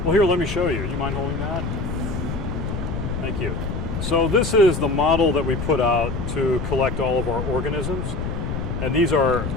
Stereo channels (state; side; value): noise; left; rumble, 4 dB below the sound